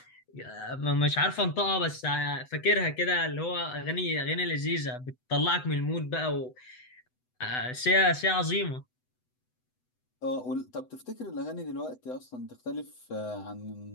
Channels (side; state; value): right; late; 8.0 ms